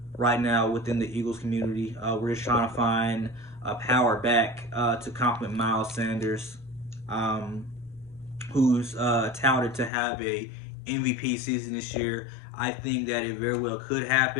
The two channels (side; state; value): right; drops out; at 9.9 s